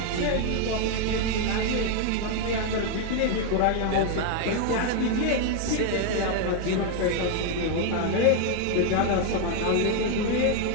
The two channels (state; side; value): different; both; correlation 0.01